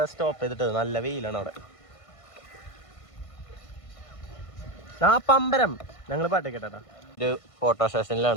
സ്റ്റോപ്പ് ചെയ്തിട്ടത്. നല്ല വെയിലാണ് അവിടെ. പമ്പരം ഞങ്ങൾ പാട്ട് കേട്ടാ. ഒരു ഫോട്ടോ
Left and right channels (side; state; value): right; late; 1.5 ms